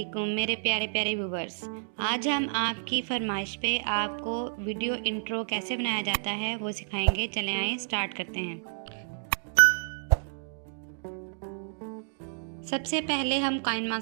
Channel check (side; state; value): left; silent; digital silence